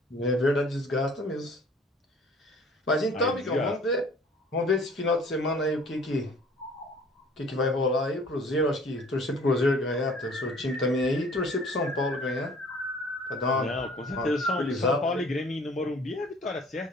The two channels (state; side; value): normal; both; correlation 0.51